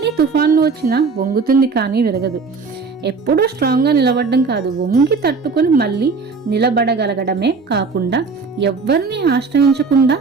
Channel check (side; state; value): left; quieter; 4.7 dB